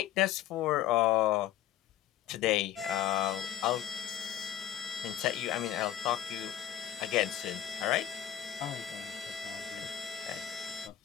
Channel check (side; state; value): right; quieter; 11.7 dB